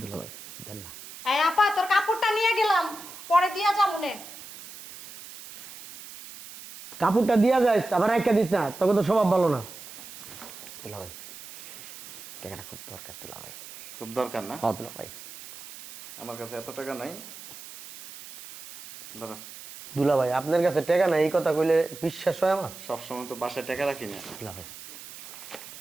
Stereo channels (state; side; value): noise; right; hiss, 15 dB below the sound